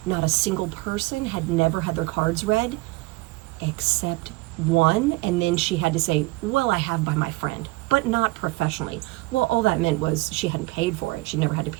not a single person had never had their cards read except one, and then she had to say, well, I have by my friend, but not professionally. Well, all that meant was she hadn't paid for it. She never had to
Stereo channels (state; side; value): quieter; left; 21.7 dB